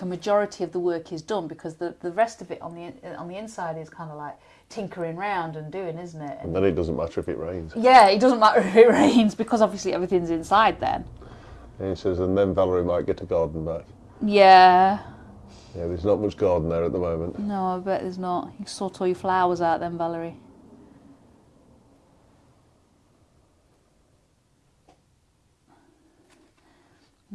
a majority of the work is done, because the rest of it on the inside is kind of like tinkering round and doing, isn't it? And then it doesn't matter if it rains. Yeah, it doesn't matter if it rains, because obviously everything's inside then. And he says, and then Valerie might get a garden back. Yeah. Yeah, there's not much garden there at the moment. No, I bet there's not. You can sort all your flowers out then, Valerie.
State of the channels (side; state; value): both; identical; correlation 1.00